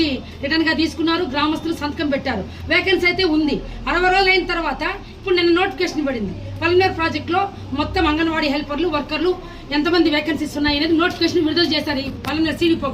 రిటర్న్ గా తీసుకున్నారు, గ్రామస్తులు సంతకం పెట్టారు. వేకెన్సీ అయితే ఉంది. 60 రోజులు అయిన తర్వాత ఇప్పుడు నిన్న నోటిఫికేషన్ పడింది. పొలంనేరు ప్రాజెక్ట్ లో మొత్తం అంగన్వాడీ హెల్పర్లు, వర్కర్లు ఎంతమంది వేకెన్సీస్ ఉన్నాయి అనేది నోటిఫికేషన్ విడుదల చేశారు ఈ పొలంనేరు సిడిపో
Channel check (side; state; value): both; identical; correlation 1.00